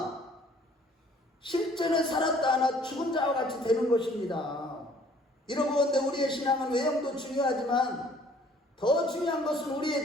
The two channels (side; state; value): both; normal; correlation 0.57